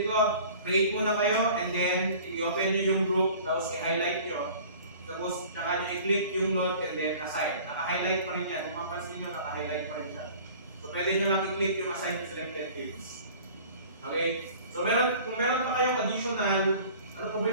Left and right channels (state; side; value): inverted; both; correlation -0.46